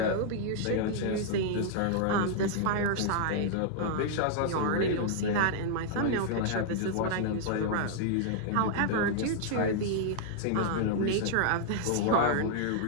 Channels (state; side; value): different; both; correlation -0.01